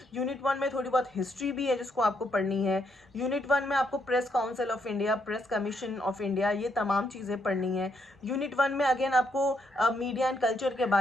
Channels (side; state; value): both; normal; correlation 0.76